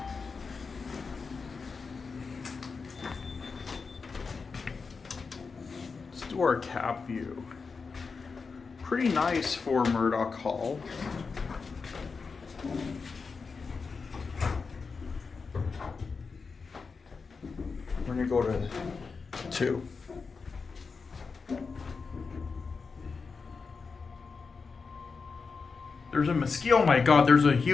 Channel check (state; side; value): quieter; right; 4.8 dB